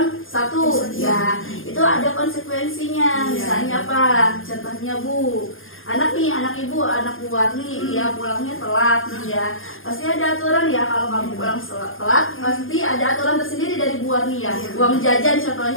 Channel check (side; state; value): right; late; 0.59 ms